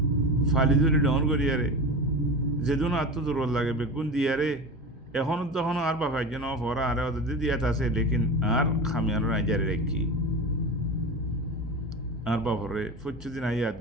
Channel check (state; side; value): normal; both; correlation 0.27